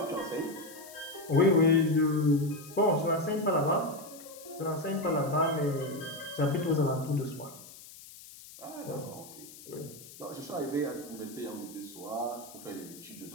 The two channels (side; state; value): left; noise; hiss, 17 dB below the sound